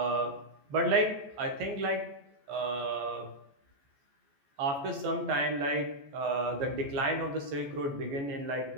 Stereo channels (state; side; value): late; left; 14 ms